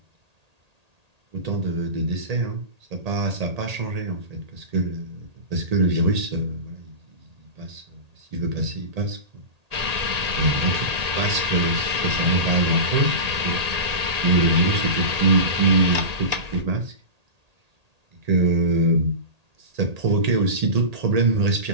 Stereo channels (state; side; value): late; left; 1.8 ms